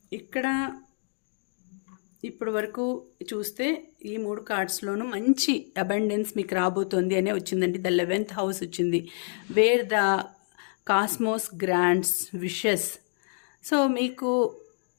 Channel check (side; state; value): right; silent; digital silence